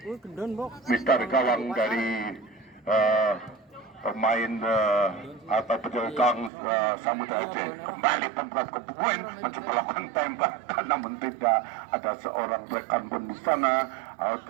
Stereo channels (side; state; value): left; drops out; at 6.5 s